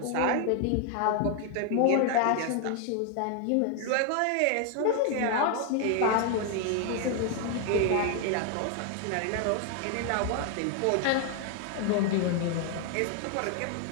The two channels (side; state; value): both; different; correlation 0.01